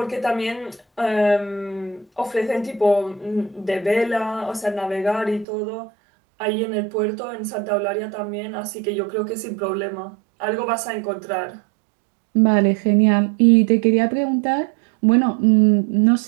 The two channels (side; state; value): left; drops out; at 5.5 s